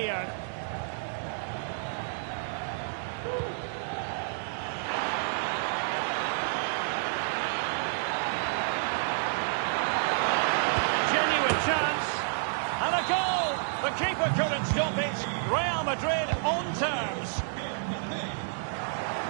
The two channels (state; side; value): silent; left; digital silence